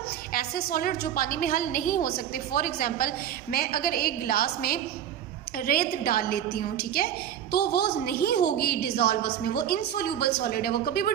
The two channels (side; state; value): left; quieter; 10.0 dB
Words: ऐसे सॉलिड जो पानी में हल नहीं हो सकते। फॉर एग्जाम्पल, मैं अगर एक गिलास में रेत डाल लेती हूँ, ठीक है, तो वो नहीं होगी डिज़ोल्व उसमें, वो इनसोल्यूबल सॉलिड है, वो कभी भी